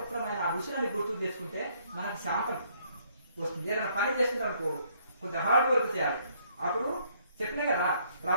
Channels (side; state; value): both; inverted; correlation -0.66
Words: ఆ ఋషులని గుర్తు చేసుకుంటే మనకు శాంతం వస్తుంది. ఏదైనా పని చేస్తుంటాం అనుకో, కొంచెం హార్డ్ వర్క్ చేయాలి. అప్పుడు చెప్పినా కదా,